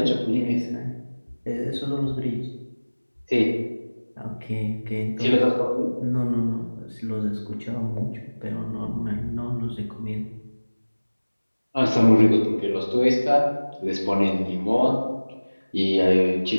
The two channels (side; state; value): both; inverted; correlation -1.00